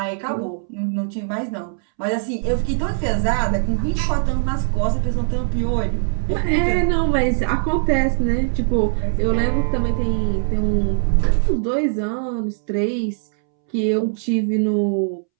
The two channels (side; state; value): left; silent; 65 dB below the other